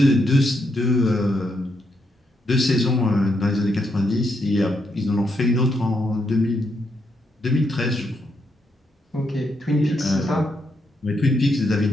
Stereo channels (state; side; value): normal; both; correlation 0.79